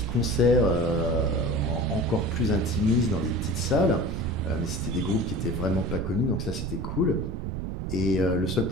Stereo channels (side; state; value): right; noise; rumble, 4 dB below the sound